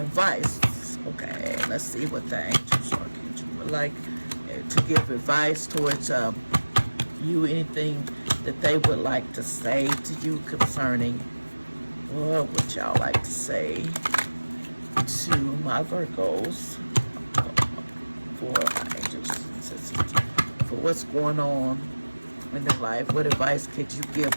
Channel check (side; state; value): both; inverted; correlation -1.00